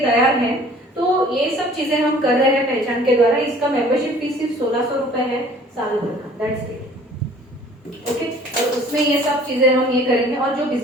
हैं. तो ये सब चीजें हम कर रहे हैं पहचान के द्वारा. इसका मेंबरशिप फीस सिर्फ 1600 रुपए है साल भर का. That's it. ओके, और उसमें ये सब चीजें हम ये करेंगे. और जो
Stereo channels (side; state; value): both; normal; correlation 0.52